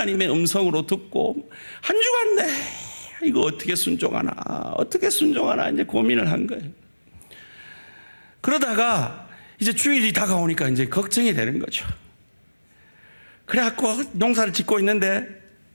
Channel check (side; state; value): both; inverted; correlation -1.00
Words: 음성으로 듣고 한 주간 이거 어떻게 순종하나 이제 고민을 한 거예요. 그러다가 이제 주일이 다가오니까 이제 걱정이 되는 거죠. 그래갖고 농사를 짓고 있는데